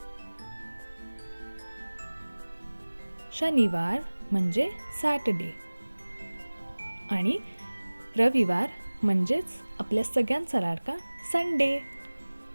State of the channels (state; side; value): inverted; both; correlation -1.00